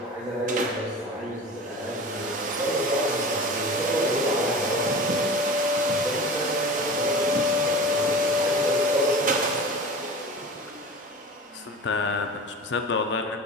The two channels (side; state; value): both; normal; correlation 0.35